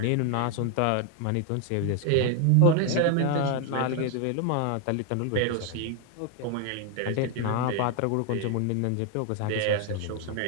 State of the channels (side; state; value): both; different; correlation 0.00